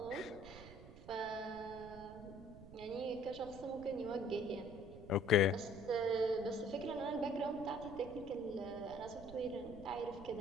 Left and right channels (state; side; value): noise; right; rumble, 16 dB below the sound